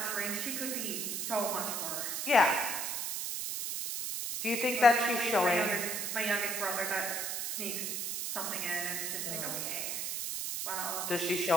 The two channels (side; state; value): right; noise; hiss, 2 dB below the sound